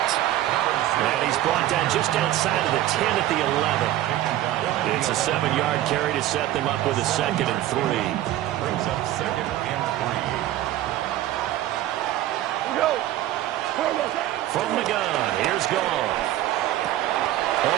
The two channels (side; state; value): left; quieter; 13.9 dB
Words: And he's brought down just outside of the 10 at the 11. It's a 7-yard carry to set them up with a 2nd and 3. Brings up 2nd and 3. Go. From the gun, here's Goff.